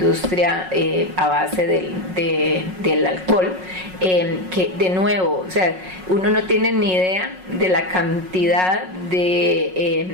a base del alcohol, que de nuevo, o sea, uno no tiene ni idea de la cantidad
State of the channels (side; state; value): left; late; 5.4 ms